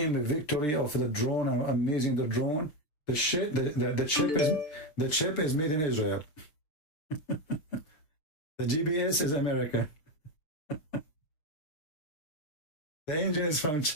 a victory of the drone, amazing the drone. The chip is made in Israel. The GPS is American. The engine is from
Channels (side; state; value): right; late; 6.6 ms